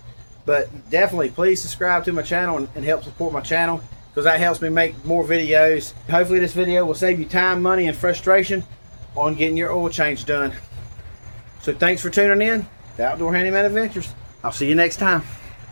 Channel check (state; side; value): inverted; both; correlation -1.00